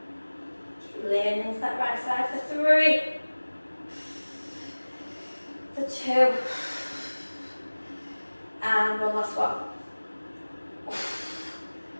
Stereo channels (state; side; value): inverted; both; correlation -1.00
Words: Keep leaning into that right side. For 3. For 2. And one last one.